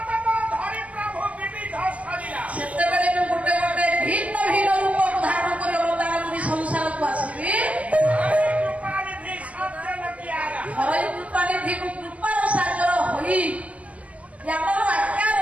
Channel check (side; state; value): left; late; 0.065 ms